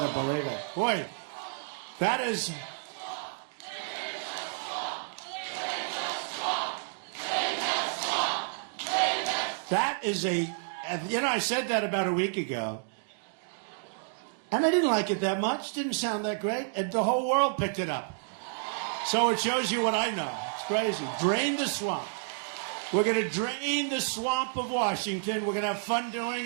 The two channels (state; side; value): silent; left; digital silence